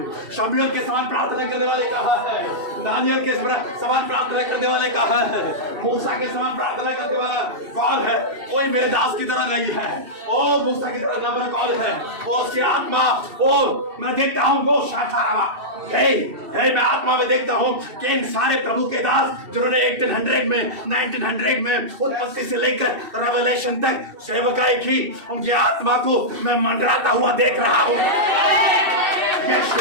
शमूएल के समान प्रार्थना करने वाले कहा है, दानियल के समान प्रार्थना करने वाले कहा है, मूसा के समान प्रार्थना करने वाला कौन है? कोई मेरे दास की तरह नहीं है। ओ मूसा की तरह नम्र कौन है? वो उसकी आत्मा, ओ मैं देखता हूँ वो शाखारा मैं आत्मा में देखता हूँ कि इन सारे प्रभु के दास जिन्होंने 1800 में 1900 में उत्पत्ति से लेकर रेवलेशन तक सेवकाई की, उनकी आत्मा को मैं मंडराता हुआ देख रहा हूँ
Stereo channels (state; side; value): late; left; 2.7 ms